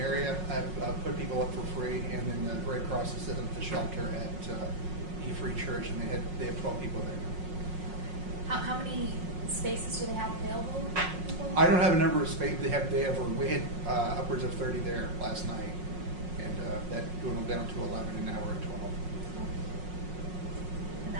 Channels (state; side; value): late; left; 5.5 ms